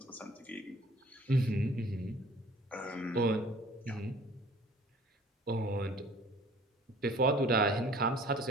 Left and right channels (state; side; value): normal; both; correlation 0.51